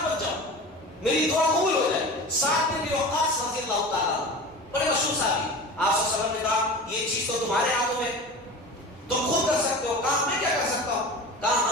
بن جاؤں، میری دعا قبول ہو جائے۔ سعد بن وقاص رضی اللہ تعالیٰ بڑے مشہور صحابی، آپ صلی اللہ علیہ وسلم نے کہا یہ چیز تو تمہارے ہاتھوں میں، تم خود کر سکتے ہو، کام میں کیا کر سکتا ہوں؟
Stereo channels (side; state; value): both; normal; correlation 0.34